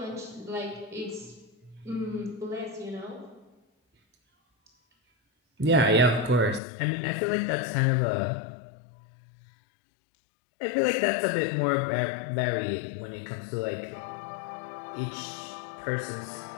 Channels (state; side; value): drops out; right; at 6.6 s